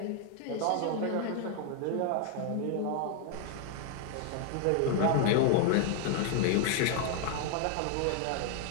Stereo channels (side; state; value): both; different; correlation 0.00